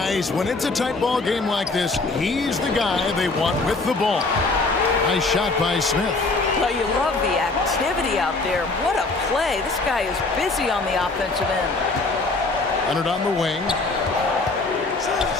when it's a tight ball game like this, he's the guy they want with the ball. Nice shot by Smith. Well, you love the activity out there. What a play. This guy is busy on the offensive end. Leonard on the wing.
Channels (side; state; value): right; quieter; 3.5 dB